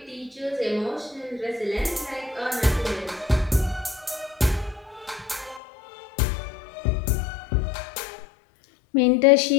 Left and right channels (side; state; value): right; drops out; at 5.6 s